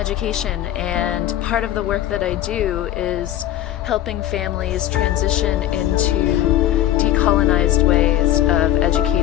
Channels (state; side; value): quieter; right; 12.8 dB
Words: and part of the work that I do is helping families transition into decolonized ways of